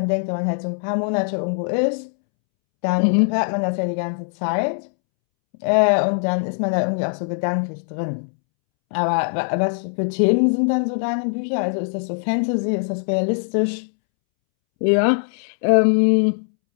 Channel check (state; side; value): silent; right; 65 dB below the other